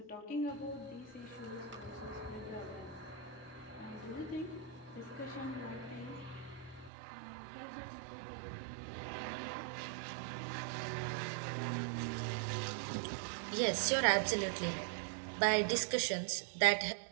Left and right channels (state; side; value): drops out; left; at 6.9 s